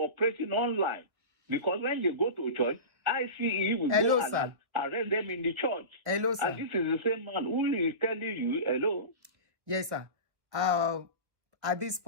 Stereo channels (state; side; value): late; left; 1.3 ms